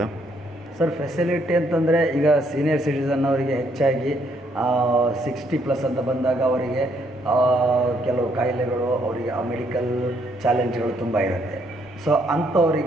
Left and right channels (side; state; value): both; normal; correlation 0.70